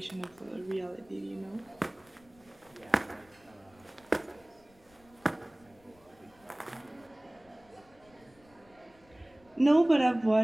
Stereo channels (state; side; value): noise; left; rumble, 29 dB below the sound